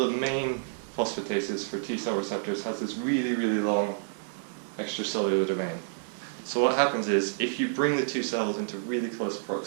main phosphatases for T cell receptors has this really, really long extracellular domain. So what happens is, if you bring the two cells into really close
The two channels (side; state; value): left; silent; digital silence